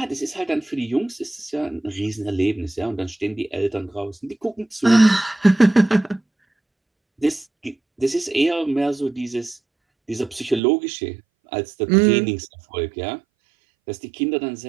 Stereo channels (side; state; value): left; drops out; at 10.6 s